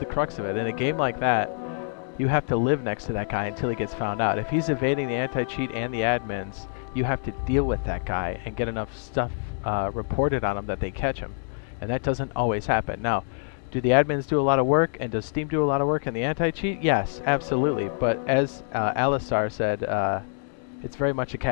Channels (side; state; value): right; silent; digital silence